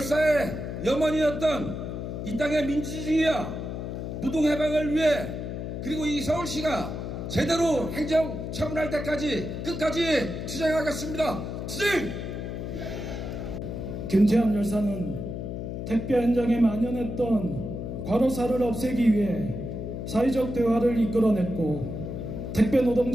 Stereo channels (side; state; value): left; noise; hum, 5 dB below the sound